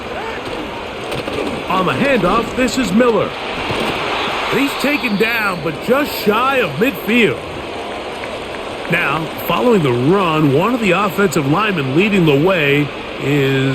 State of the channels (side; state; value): both; identical; correlation 1.00